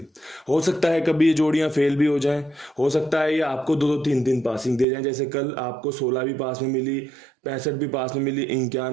हो सकता है कभी ये जोड़ियां फेल भी हो जाएं, हो सकता है ये आपको 2-2 3-3 पासिंग दे जाएं। जैसे कल आपको 16 भी पास में मिली, 65 भी पास में मिली,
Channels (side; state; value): left; drops out; at 4.9 s